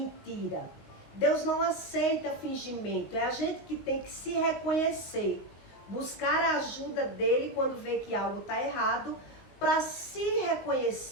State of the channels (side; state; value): right; late; 19 ms